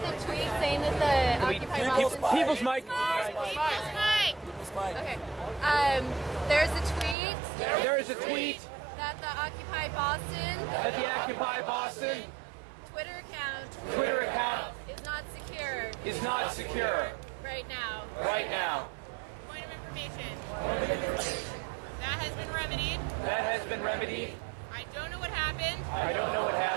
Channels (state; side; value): drops out; left; at 7.2 s